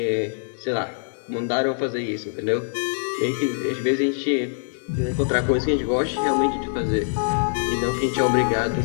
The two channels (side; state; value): right; silent; digital silence